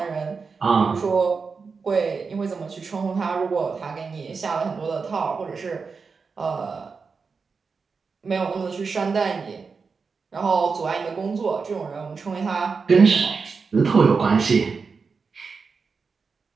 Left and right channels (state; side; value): quieter; left; 5.0 dB